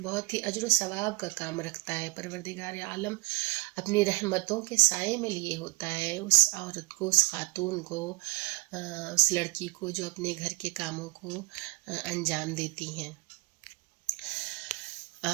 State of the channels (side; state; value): left; quieter; 23.7 dB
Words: بہت ہی اجر و ثواب کا کام رکھتا ہے۔ پروردگار عالم اپنی رحمتوں کے سائے میں لیے ہوتا ہے اس عورت کو، اس خاتون کو، اس لڑکی کو جو اپنے گھر کے کاموں کو انجام دیتی ہیں۔